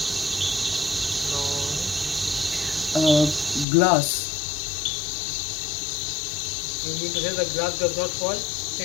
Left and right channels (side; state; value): right; drops out; at 3.7 s